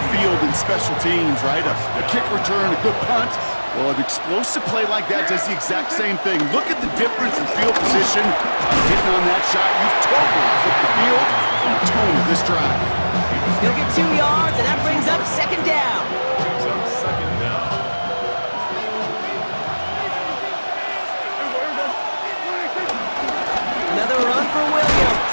field in special teams, right? A kick return, a good punt. Well, an explosive play like that does the exact same thing. Look at the difference in field position. Hitting on that shot, you've totally flipped the field and the tone of this drive. He'll get 2 yards, and that brings up 2nd down. Another run for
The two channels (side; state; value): both; inverted; correlation -1.00